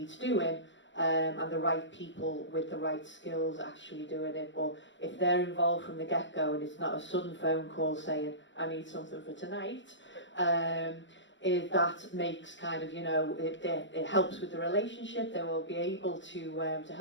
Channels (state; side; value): late; right; 0.54 ms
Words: doing, and the right people with the right skills actually doing it. But if they're involved from the get-go and it's not a sudden phone call saying, I need something for tonight, that makes kind of, it helps with the relationship. They will be able to